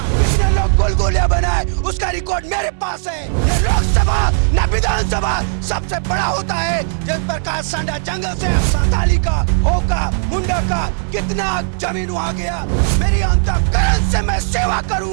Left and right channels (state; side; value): silent; left; digital silence